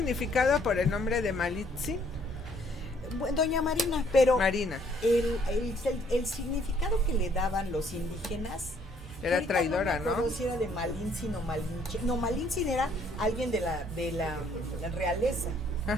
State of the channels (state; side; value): normal; both; correlation 0.64